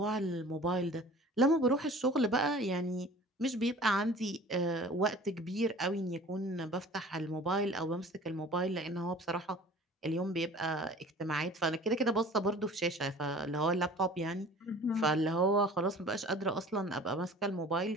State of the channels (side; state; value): both; normal; correlation 0.45